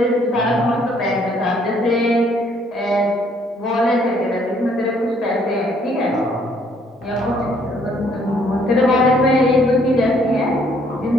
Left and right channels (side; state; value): both; normal; correlation 0.65